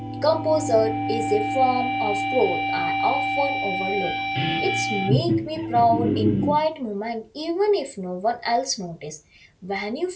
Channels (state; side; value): identical; both; correlation 1.00